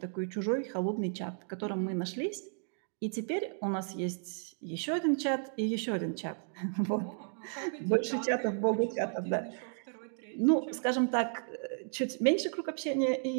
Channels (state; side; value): silent; left; 55 dB below the other